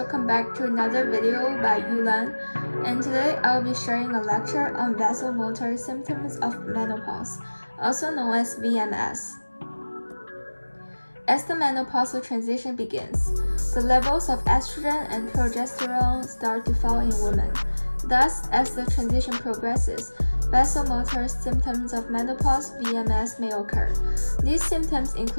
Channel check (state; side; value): inverted; both; correlation -1.00